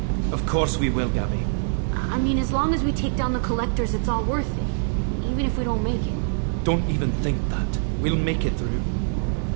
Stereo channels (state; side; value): silent; left; digital silence